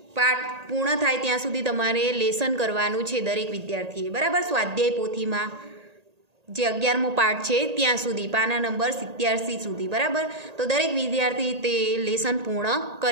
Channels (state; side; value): late; left; 1.8 ms